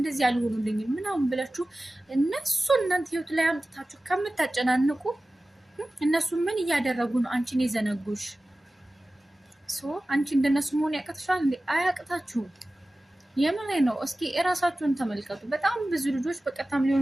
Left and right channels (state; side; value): normal; both; correlation 0.96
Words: አልሆኑልኝም ምናምን ብላችሁ እነሱ እናንተ ህይወት ላይ አምጥታችሁ ከምታጨናንቁ እነሱ ምን እያደረጉ ነው አንቺን የዘነጉሽ? አንቺ እንደነሱ መሆን ያቅትሻል እንዴ? አያቅታችሁም። የምን ነው? እስኪ እራሳችሁን ተመልከቱ። በጣም ብዙ ልጆች በቀጥታም